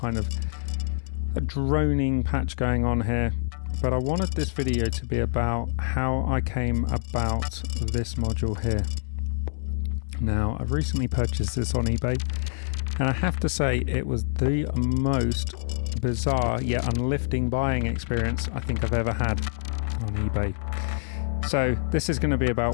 of a droning patch going on here, but I wanted this video to be about how I came about this module here. Now, I've recently purchased this on eBay, and I have to say it was the most bizarre yet uplifting buying experience I think I've ever had on eBay. So this is going to be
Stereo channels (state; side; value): silent; right; digital silence